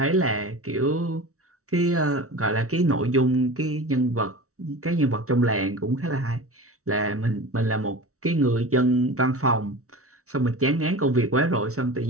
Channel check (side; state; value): left; late; 0.64 ms